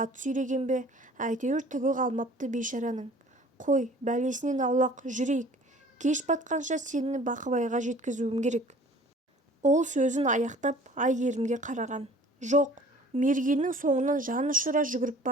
сүйреген бе, әйтеуір түгі қалмапты бейшараның. Қой, бәлесінен аулақ жүрейік. Кеш батқанша сені Бақыбайға жеткізуім керек». Ол сөзін аяқтап Айгерімге қараған. Жоқ, Мергеннің соңынан жан ұшыра жүгіріп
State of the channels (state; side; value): normal; both; correlation 0.49